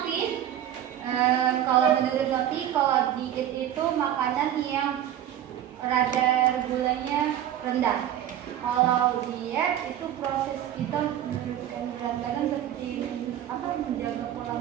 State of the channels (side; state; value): left; quieter; 11.2 dB